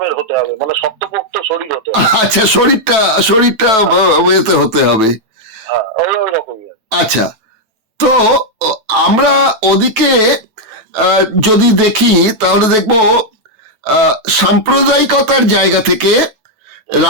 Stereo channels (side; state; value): left; late; 9.1 ms